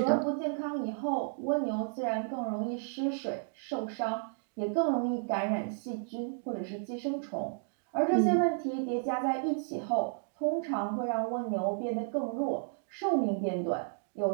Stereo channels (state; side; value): silent; left; digital silence